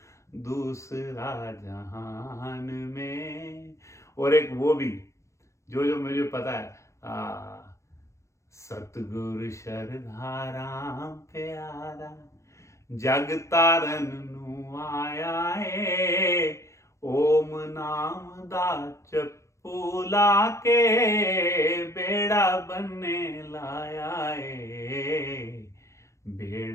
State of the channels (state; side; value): late; right; 0.14 ms